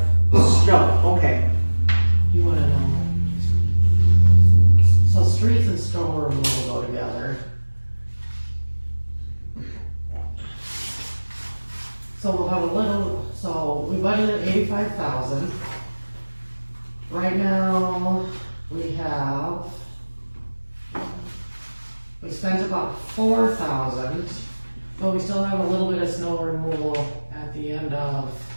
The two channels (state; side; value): inverted; both; correlation -1.00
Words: snow, okay. You wanna know? So streets and snow removal go together. So we'll have a little, so we budgeted 85,000. Right now, we spent about 4,000, but we still have a little bit of snow removal at the end of,